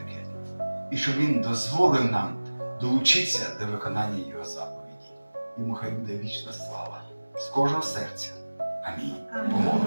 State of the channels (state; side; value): inverted; both; correlation -1.00